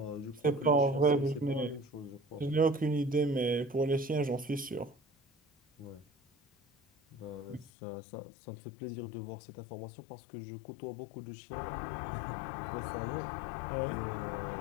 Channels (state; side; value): drops out; right; at 7.7 s